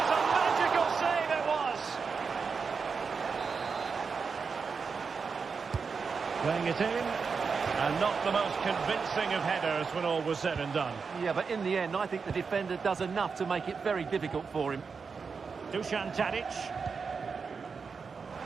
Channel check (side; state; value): left; quieter; 5.3 dB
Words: a magical save it was! Playing it in. And not the most convincing of headers when all was said and done. Yeah, but in the end, I think the defender does enough to make it very difficult for him. Dusan Tadic.